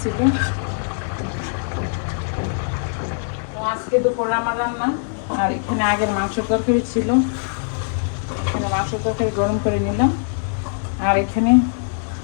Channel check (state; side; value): silent; right; 64 dB below the other